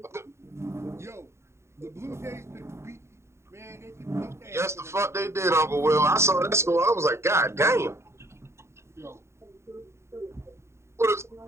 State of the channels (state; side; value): late; left; 0.13 ms